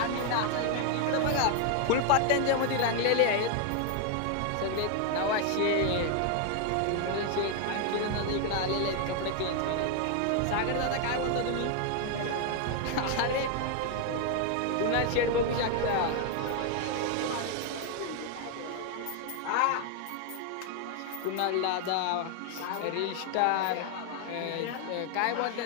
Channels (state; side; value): different; both; correlation 0.00